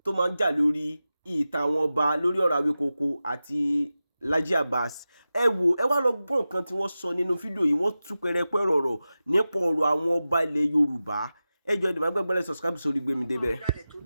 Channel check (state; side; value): inverted; both; correlation -0.94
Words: tó máa ń jà lórí ìtàn àwọn ọba lórí ọ̀rọ̀ Awikonko àti Laji Abass. Ẹ wò ẹ wá lọ gbọ́ nǹkan tí wọ́n sọ nínú fídíò yìí. Wọ́n tú pẹrẹpẹ ọ̀rọ̀ nípa ọ̀rọ̀ àwọn ọba ilẹ̀ Yorùbá. Ẹ jọ̀ọ́ ẹ má gbàgbé subscribe sórí Gbemi débẹ̀.